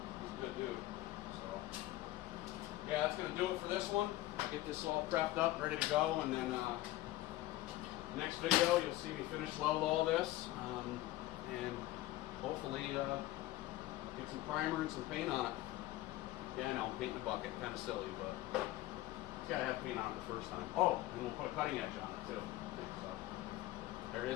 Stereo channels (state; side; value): quieter; right; 16.5 dB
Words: He's a good dude. So, yeah, that's going to do it for this one. Get this all prepped up, ready to go, and then next video you'll see me finish weld all this, and hopefully get some primer and some paint on it. Yeah, I know, paint in the bucket, kind of silly, but it's got to have paint on it the first time. Oh, and we'll put a cutting edge on it too. So, there it